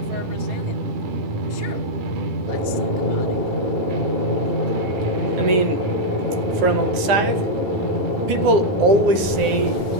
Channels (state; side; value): late; left; 9.8 ms